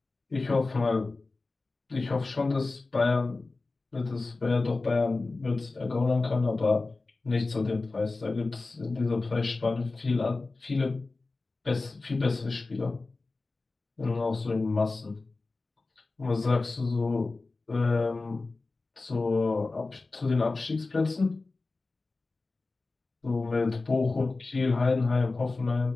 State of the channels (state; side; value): quieter; right; 3.5 dB